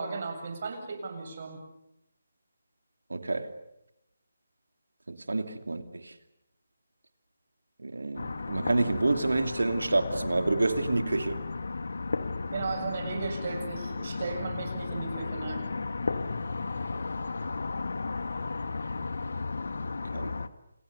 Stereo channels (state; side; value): inverted; both; correlation -0.92